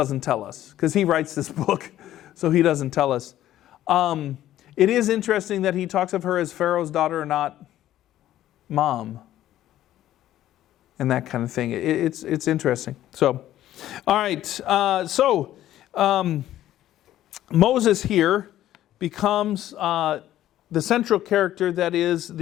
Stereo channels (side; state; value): right; quieter; 13.1 dB